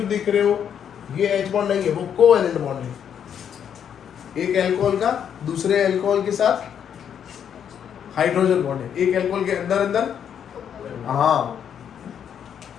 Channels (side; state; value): right; quieter; 8.5 dB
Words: दिख रहे हो ये H बॉन्ड नहीं है, वो कोवेलेंट बॉन्ड है। एक अल्कोहल का दूसरे अल्कोहल के साथ हाइड्रोजन बॉन्ड है, एक अल्कोहल के अंदर अंदर। हाँ,